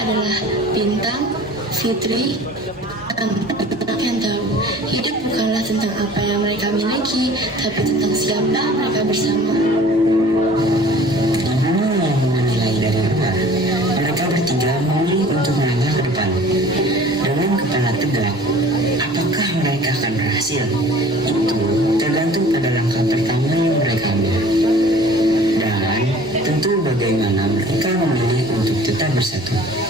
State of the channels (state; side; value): normal; both; correlation 0.47